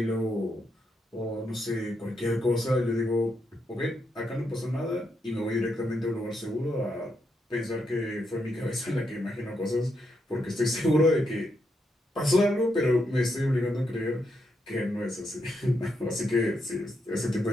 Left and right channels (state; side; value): normal; both; correlation 0.81